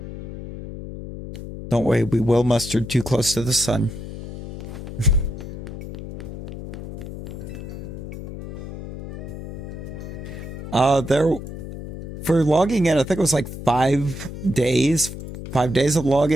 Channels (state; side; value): noise; left; hum, 10 dB below the sound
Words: Don't worry, we will mustard too close to the sun. There, for logging in, I think it was like 5 days. 5 days of